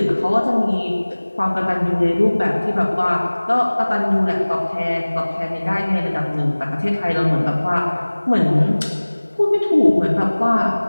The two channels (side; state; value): both; inverted; correlation -1.00